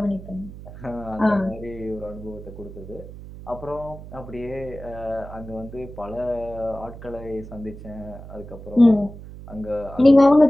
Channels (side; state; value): right; noise; hum, 14 dB below the sound